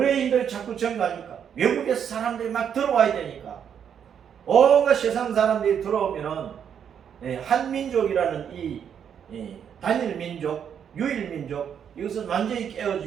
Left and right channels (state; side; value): quieter; left; 8.2 dB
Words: 자꾸 증가하니까, 외국에서 사람들이 막 들어와야 되니까, 온갖 세상 사람들이 들어오면은 한민족이라는 이 단일 민족, 유일 민족, 이것은 완전히